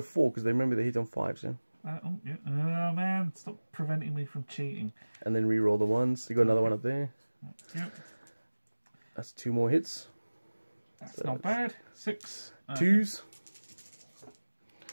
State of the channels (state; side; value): inverted; both; correlation -1.00